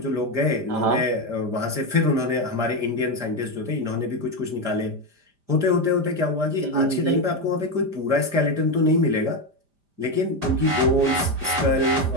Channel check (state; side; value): late; left; 5.0 ms